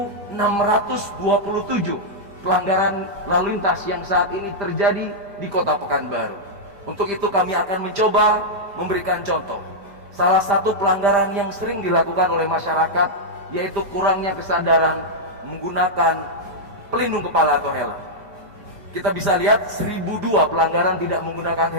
pelanggaran lalu lintas yang saat ini terjadi di Kota Pekanbaru. Untuk itu kami akan mencoba memberikan contoh. Salah satu pelanggaran yang sering dilakukan oleh masyarakat yaitu kurangnya kesadaran menggunakan pelindung kepala atau helm. Kita bisa lihat 1002 pelanggaran tidak menggunakan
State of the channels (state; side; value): late; left; 5.0 ms